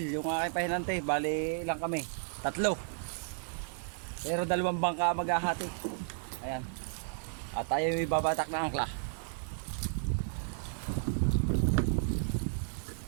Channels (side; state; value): left; silent; digital silence